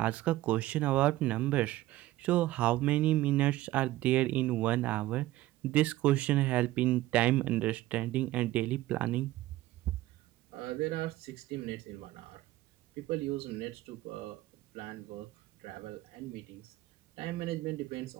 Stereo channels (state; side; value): quieter; left; 16.3 dB